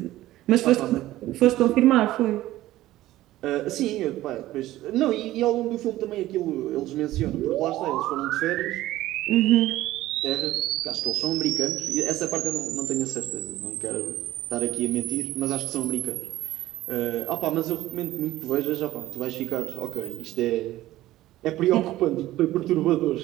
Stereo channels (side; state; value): left; quieter; 15.6 dB